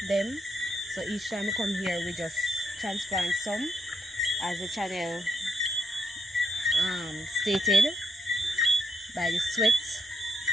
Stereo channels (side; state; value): both; normal; correlation 0.78